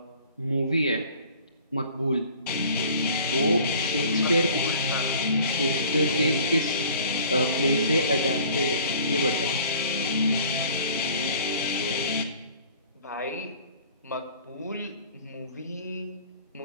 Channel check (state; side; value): inverted; both; correlation -0.50